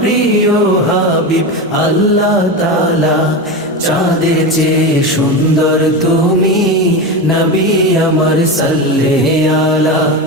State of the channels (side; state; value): both; normal; correlation 0.20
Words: হাবিব আল্লাহ তাআলা। চাঁদের চেয়ে সুন্দর তুমি নবী আমার সাল্লে আলা।